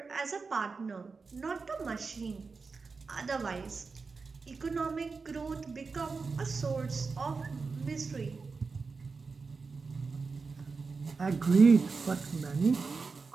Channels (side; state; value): left; quieter; 4.6 dB